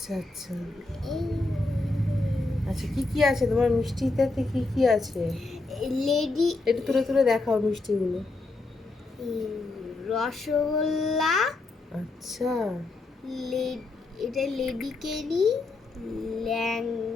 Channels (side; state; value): right; quieter; 3.3 dB